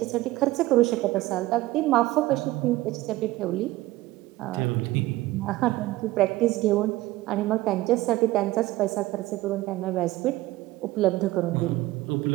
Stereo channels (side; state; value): left; quieter; 17.8 dB